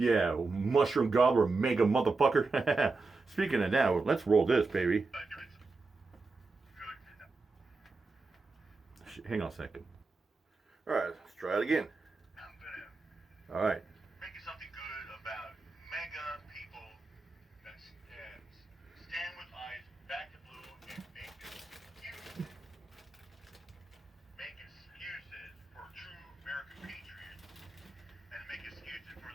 mushroom gobbler, mega motherfucker. Speaking of that, let's roll this, baby. Hang on a second. All right, let's try it again. All right. Making something good about MAGA people that stand with ICE, BackTheBlue, and make excuses for true American patriots, and make excuses for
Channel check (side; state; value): left; quieter; 3.8 dB